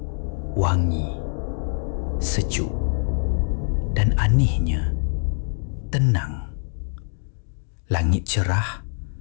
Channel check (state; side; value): silent; right; 57 dB below the other